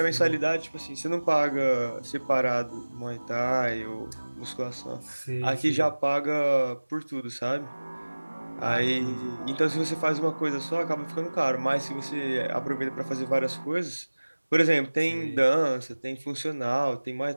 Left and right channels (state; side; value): inverted; both; correlation -1.00